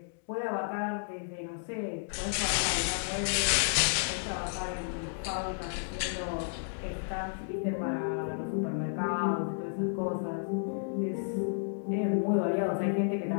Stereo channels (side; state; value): right; silent; digital silence